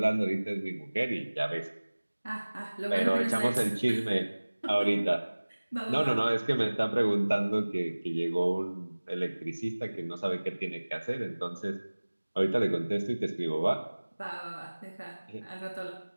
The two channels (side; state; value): both; inverted; correlation -1.00